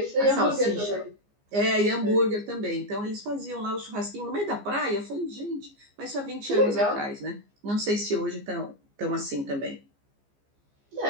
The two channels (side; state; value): left; late; 15 ms